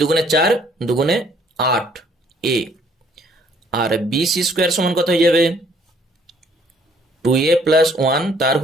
দুগুণে 4, দুগুণে 8 এ, আর বিসি স্কোয়ার সমান কত হয়ে যাবে 2a+1 তার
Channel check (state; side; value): normal; both; correlation 0.62